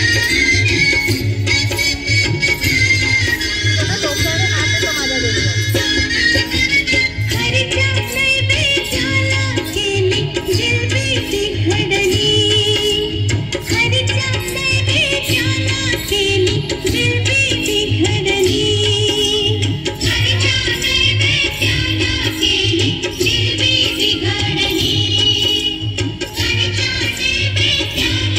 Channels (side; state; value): both; identical; correlation 1.00